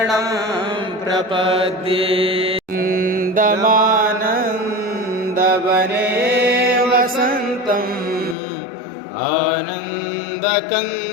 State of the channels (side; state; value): right; drops out; at 8.3 s